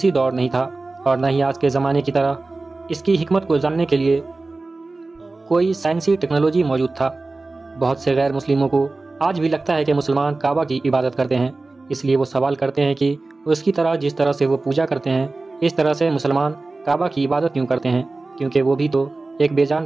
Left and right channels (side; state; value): left; quieter; 3.4 dB